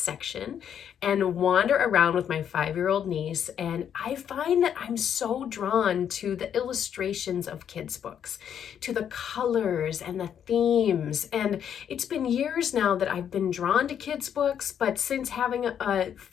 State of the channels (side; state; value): right; quieter; 8.8 dB